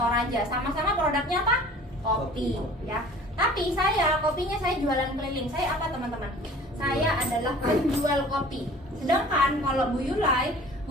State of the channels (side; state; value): both; normal; correlation 0.46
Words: Sama-sama produknya apa? Kopi ya. Tapi kopinya saya jualan keliling. Saya apa teman-teman? Saya adalah penjual kopi. Sedangkan kalau Bu Yulai